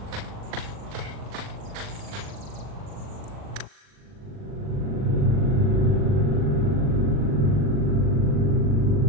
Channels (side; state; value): left; late; 40 ms